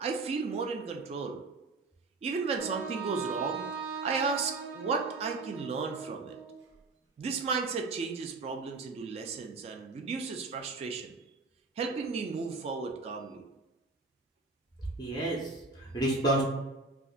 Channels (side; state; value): left; quieter; 3.7 dB